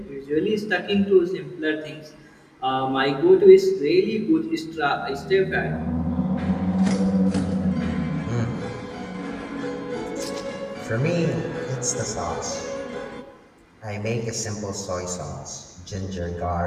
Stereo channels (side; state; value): both; identical; correlation 1.00